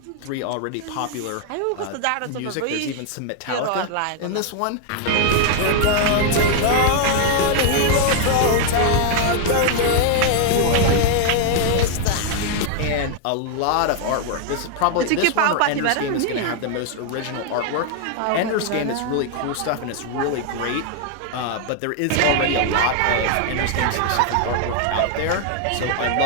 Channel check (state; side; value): different; both; correlation 0.00